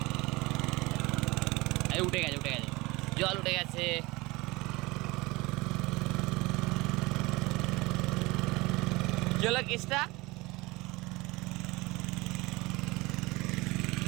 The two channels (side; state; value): left; quieter; 22.8 dB